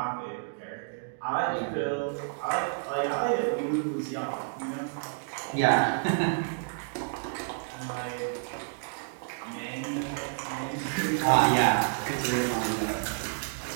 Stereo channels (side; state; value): left; silent; digital silence